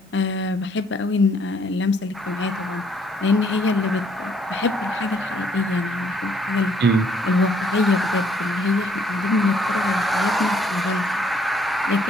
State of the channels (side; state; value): both; normal; correlation 0.65